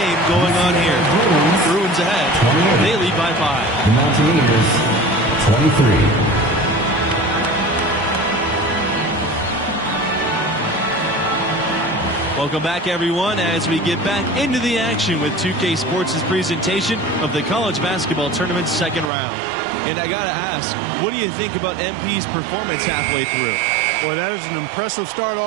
going on here. Bruins ahead. They lead by 5. The Mountaineers, 23. Welcome back, everyone, as we get back into the action with 2K Sports' presentation of the college basketball tournament's second round. And I got to ask, what do you think about MP's performance halfway through? Boy, that is an impressive start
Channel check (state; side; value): drops out; left; at 19.1 s